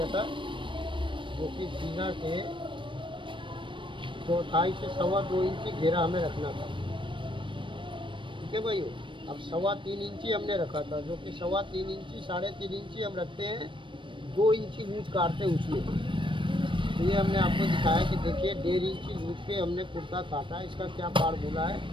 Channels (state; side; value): late; left; 0.24 ms